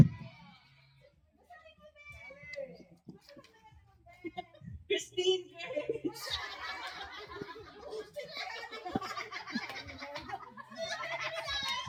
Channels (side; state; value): both; identical; correlation 1.00